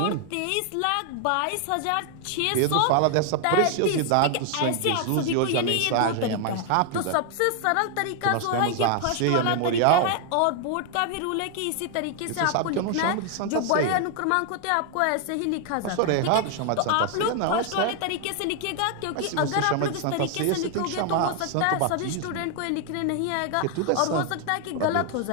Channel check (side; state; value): both; different; correlation 0.00